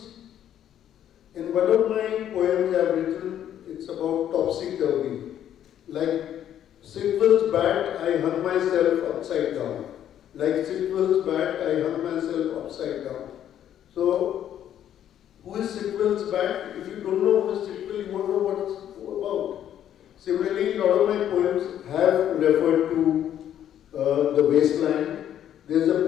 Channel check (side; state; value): right; quieter; 10.5 dB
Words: in one of my poems I've written, it's about topsy-turvy. Like Sitwell's bat, I hung myself upside down. Like Sitwell's bat, I hung myself upside down. So, who is Sitwell's bat? If you don't know who is Sitwell, you won't know what it's about. Similarly, a lot of my poems have referred to the wasteland. There's a